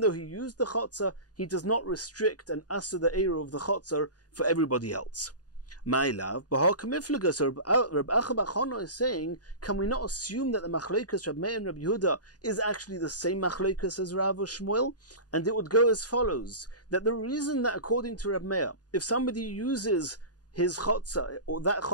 though he used the chotzer, he does not restrict and asser the eruv of the chotzer for everybody else. My love, Reb Acha bar Chana is saying, can we not assume that the machlokas Reb Meir and Reb Yehuda is actually the same machlokas as Rav or Shmuel? And it would go as follows, that the reason that according to Reb Meir, if somebody uses his chotzer, or that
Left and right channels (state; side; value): late; right; 0.68 ms